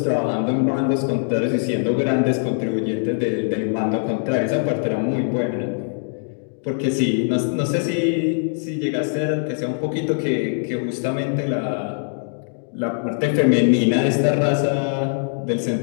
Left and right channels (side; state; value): right; silent; digital silence